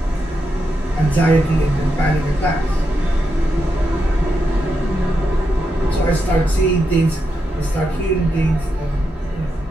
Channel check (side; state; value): both; normal; correlation 0.85